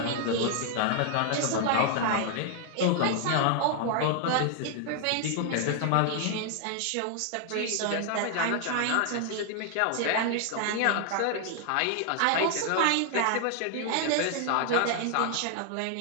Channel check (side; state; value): both; different; correlation 0.00